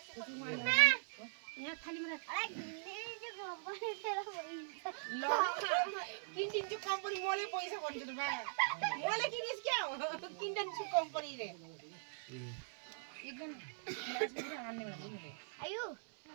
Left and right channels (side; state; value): left; silent; 50 dB below the other